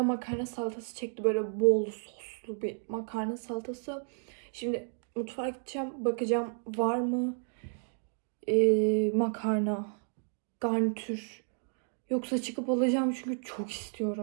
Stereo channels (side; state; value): left; silent; 56 dB below the other